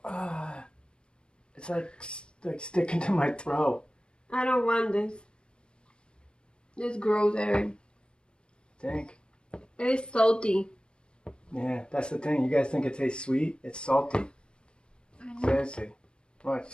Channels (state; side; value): late; right; 0.054 ms